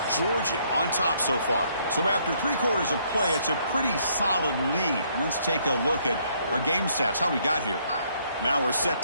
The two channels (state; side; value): inverted; both; correlation -0.68